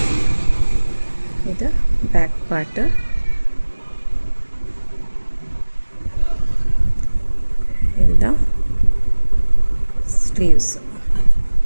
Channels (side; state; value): both; inverted; correlation -1.00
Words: இது பேக் பார்ட்டு. இதுதான் sleeves.